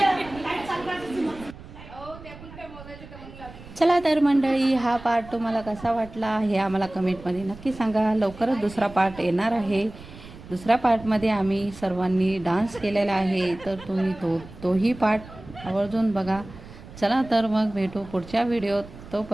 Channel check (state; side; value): noise; right; rumble, 17 dB below the sound